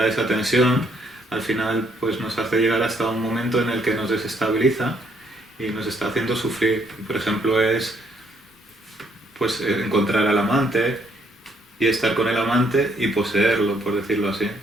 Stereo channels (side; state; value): both; normal; correlation 0.69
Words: esa tensión, al final pues nos hace llegar hasta un momento en el que nos desestabiliza y nos está haciendo sufrir. Por ejemplo, es pues encontrar al amante y estar con el amante y poseerlo, por decirlo así.